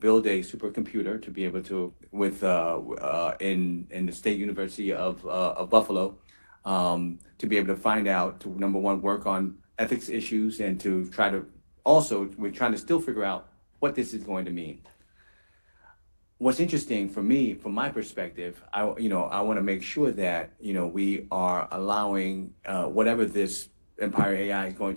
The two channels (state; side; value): inverted; both; correlation -1.00